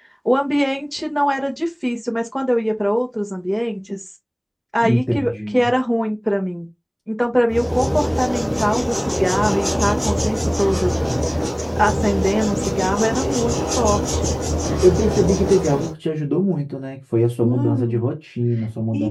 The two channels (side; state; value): both; identical; correlation 1.00